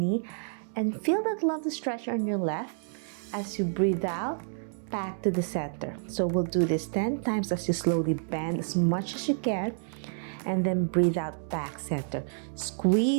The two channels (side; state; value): left; silent; digital silence